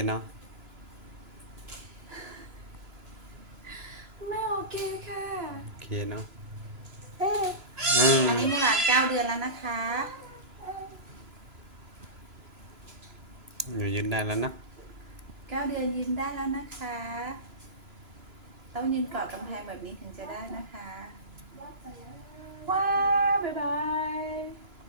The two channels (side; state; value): left; late; 2.9 ms